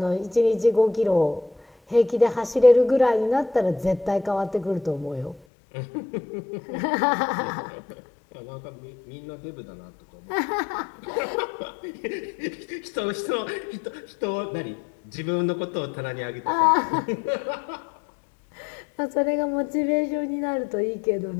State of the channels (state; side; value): drops out; right; at 5.4 s